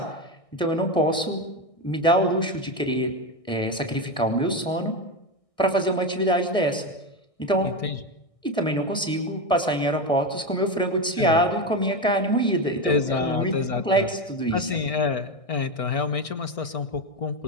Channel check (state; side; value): late; right; 1.6 ms